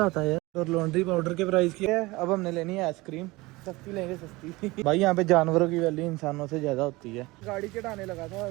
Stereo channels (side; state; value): left; quieter; 21.9 dB